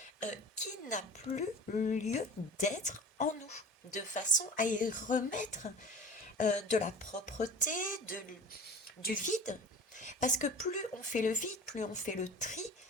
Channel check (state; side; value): normal; both; correlation 0.37